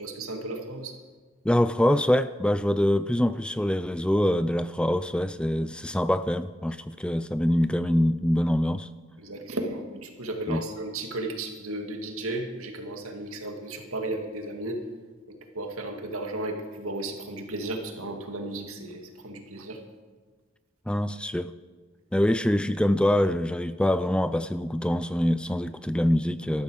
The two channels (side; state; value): both; normal; correlation 0.87